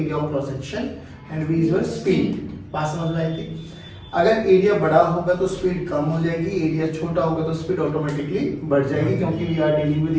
of cross section and v is your speed. बात समझ में आई थी? अगर एरिया बड़ा होगा तो स्पीड कम हो जाएगी, एरिया छोटा होगा तो स्पीड ऑटोमेटिकली बढ़ जाएगी, क्योंकि we are dealing with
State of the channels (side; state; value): both; identical; correlation 1.00